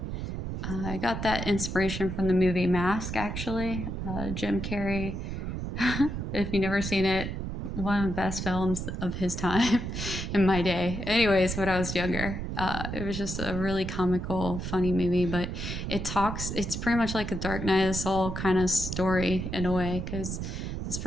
I got that inspiration from the movie Mask, actually. Jim Carrey. If you've never seen it, one of the best films of his time in my day. Anyways, when I was younger, it was just a really comical, funny movie, but it's pretty much like a Dark Night of the Soul kind of story in a way, because this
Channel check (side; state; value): right; noise; rumble, 4 dB below the sound